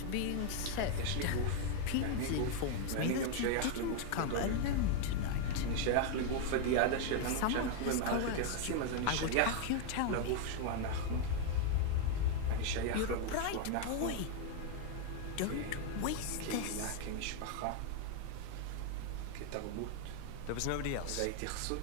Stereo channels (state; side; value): different; both; correlation 0.00